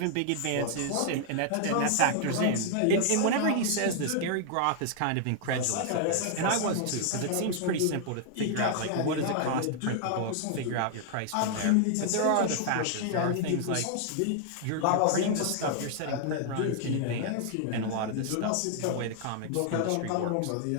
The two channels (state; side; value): different; both; correlation 0.00